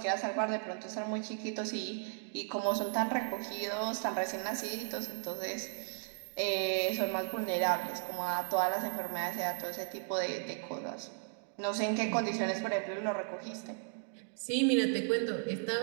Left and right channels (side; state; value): left; silent; 54 dB below the other